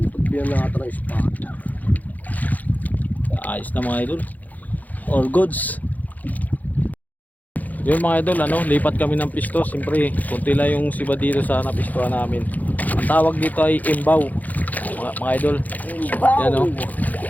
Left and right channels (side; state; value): right; late; 0.080 ms